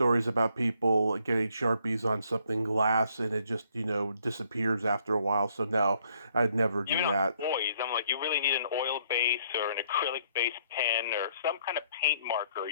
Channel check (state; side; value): inverted; both; correlation -0.68